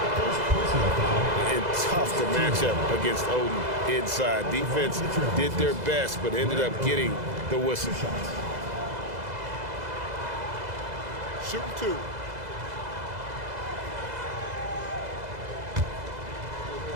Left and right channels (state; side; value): late; left; 2.0 ms